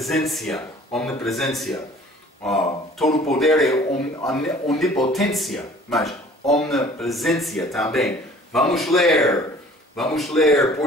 omnipresença. Todo poder é onipotência, mas omnipresença também. Vamos ler,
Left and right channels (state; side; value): normal; both; correlation 0.50